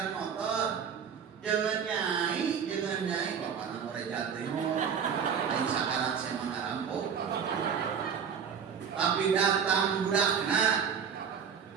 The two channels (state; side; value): quieter; left; 7.2 dB